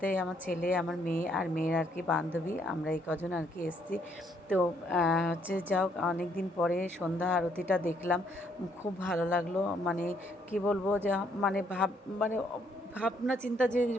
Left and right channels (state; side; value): normal; both; correlation 0.70